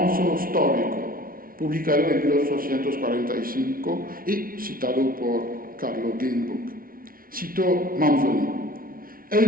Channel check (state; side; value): late; left; 0.42 ms